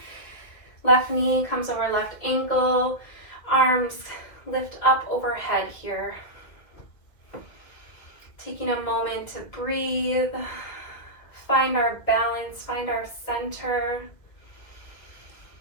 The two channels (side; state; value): right; late; 2.1 ms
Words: Left knee comes over left ankle, arms lift up overhead here. Taking a moment to breathe, find our balance, find our center.